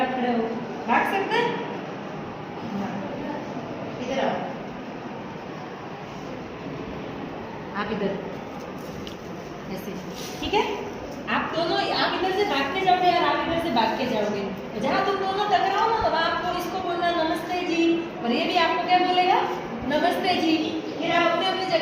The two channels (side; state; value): both; identical; correlation 1.00